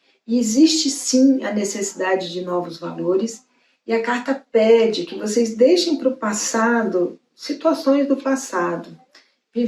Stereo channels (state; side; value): identical; both; correlation 1.00